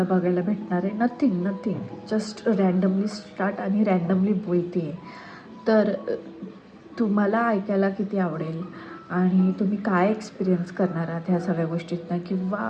बघायला भेटणार आहे. नथिंग जस्ट रँडमली स्टार्ट आणि रँडमली बोलते आहे. तर तुम्हाला ऐकायला किती आवडेल आणि तुम्ही काय एक्सपिरियन्स करणार आहात ह्या सगळ्या गोष्टीतनं,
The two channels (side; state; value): both; identical; correlation 1.00